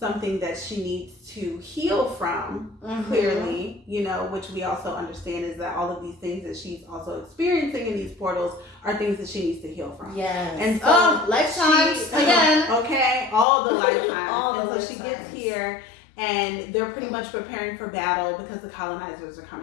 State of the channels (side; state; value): right; drops out; at 13.5 s